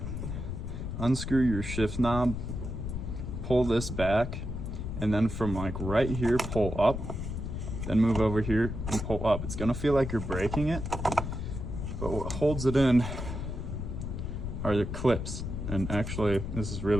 unscrew your shift knob, pull this back, and then from like right here, pull up, then move over here and pull up. It's gonna feel like you're braking it, but what holds it in are the clips. And actually, this is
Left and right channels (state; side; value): noise; left; rumble, 5 dB below the sound